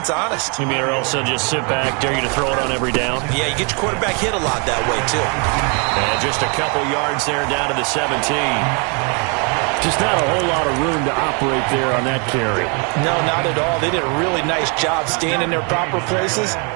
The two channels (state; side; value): quieter; left; 35.1 dB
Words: honest. You mean or else they'll just sit back, dare you to throw it on every down? Yeah, you get your quarterback hit a lot that way, too. And just a couple yards there down to the 17. Just not a whole lot of room to operate there on that carry. No, not at all. They did a really nice job staying in their proper places